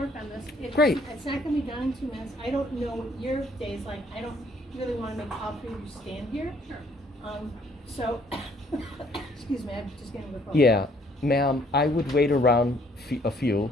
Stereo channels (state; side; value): normal; both; correlation 0.63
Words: on this. Great. It's not going to be done in 2 minutes. I don't know what your day's like. I don't really want to make all three of you stand here. So, excuse me, I'm just getting the phone. Yeah, ma'am, I would wait around a few.